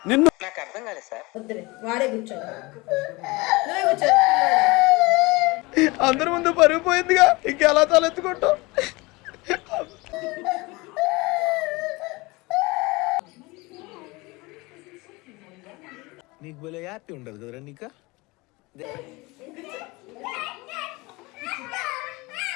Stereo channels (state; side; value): quieter; right; 23.9 dB